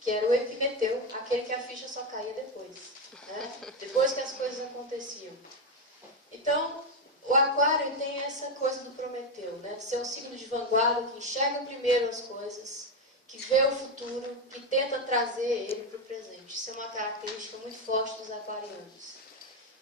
que era o Epimeteu, aquele que a ficha só caía depois, né? Depois que as coisas aconteciam. Então, o Aquário tem essa coisa do Prometeu, né? De ser um signo de vanguarda, que enxerga primeiro as coisas, que vê o futuro, que tenta trazer ele para o presente. Isso é uma característica muito forte dos aquarianos.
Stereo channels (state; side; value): normal; both; correlation 0.10